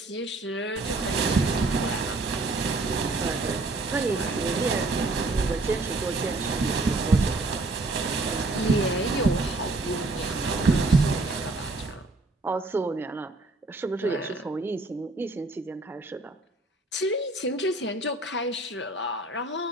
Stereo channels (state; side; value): quieter; left; 3.0 dB